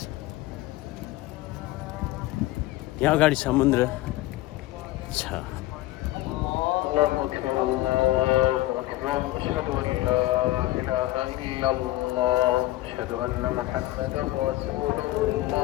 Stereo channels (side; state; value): right; quieter; 17.0 dB